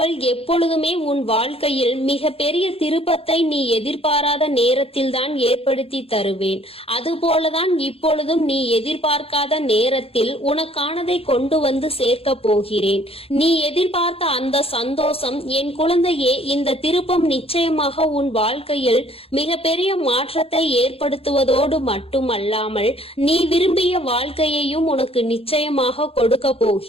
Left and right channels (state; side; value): late; right; 0.28 ms